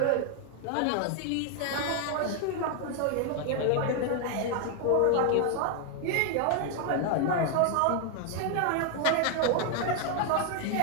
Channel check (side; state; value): both; different; correlation 0.00